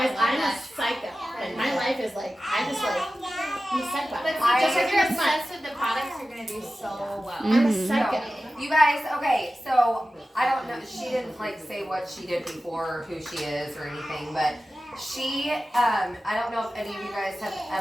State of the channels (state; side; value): normal; both; correlation 0.95